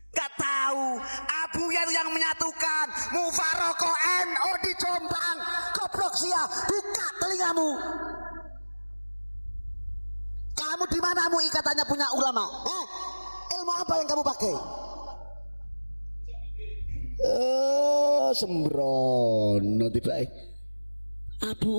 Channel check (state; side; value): inverted; both; correlation -1.00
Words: Gak tahu Abuya yang menyatukan Mufarokoh NU di Jombang. Goblok sia, buka telingamu. Kamu di mana MUI katanya punya ulama? Ilmu apa yang kamu pakai? Sembrono tiba.